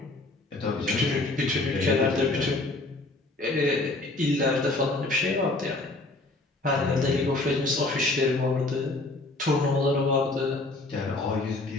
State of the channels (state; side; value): quieter; right; 3.0 dB